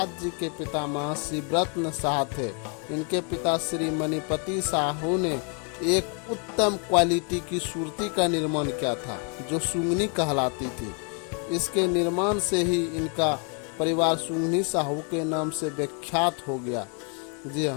जी के पिता महर्षि व्रतन शाह थे। इनके पिता श्री मणिपति साहू ने एक उत्तम क्वालिटी की सूरती का निर्माण किया था जो सुंगनी कहलाती थी। इसके निर्माण से ही इनका परिवार सुंगनी साहू के नाम से विख्यात हो गया। जी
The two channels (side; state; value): right; quieter; 38.6 dB